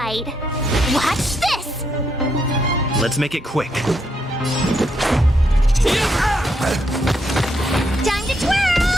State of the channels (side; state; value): both; normal; correlation 0.78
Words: Watch this! Let's make it quick. Time to twirl!